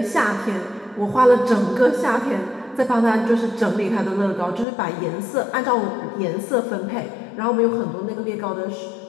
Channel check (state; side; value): drops out; right; at 4.7 s